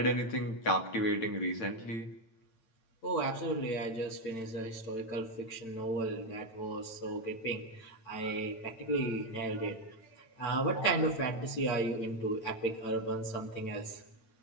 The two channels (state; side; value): late; right; 8.9 ms